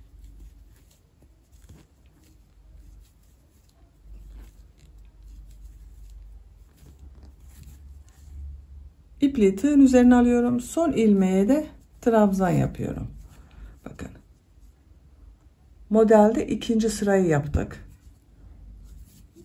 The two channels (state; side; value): identical; both; correlation 1.00